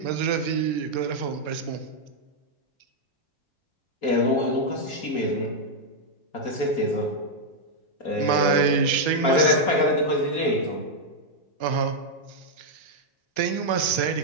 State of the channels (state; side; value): late; right; 4.3 ms